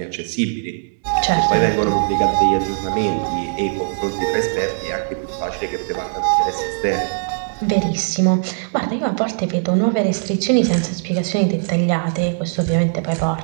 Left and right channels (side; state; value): left; silent; digital silence